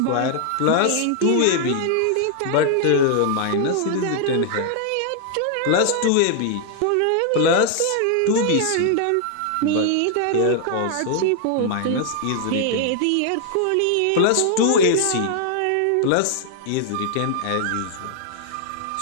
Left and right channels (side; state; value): both; different; correlation 0.00